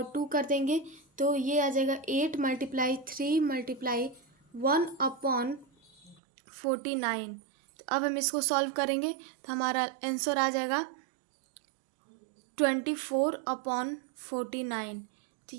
2 कर देंगे। तो ये आ जाएगा 8 मल्टीप्लाई 3 मल्टीप्लाई 1/49। तो अब हम इसको सॉल्व करेंगे तो हमारा आंसर आ जाएगा 24/49। तो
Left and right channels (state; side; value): drops out; left; at 6.2 s